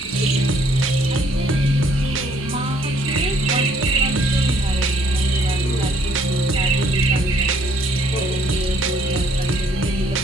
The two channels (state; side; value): normal; both; correlation 0.64